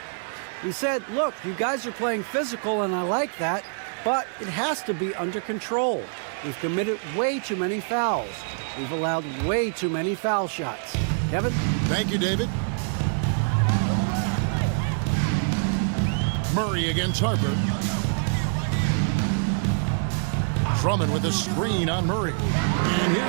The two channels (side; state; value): left; silent; digital silence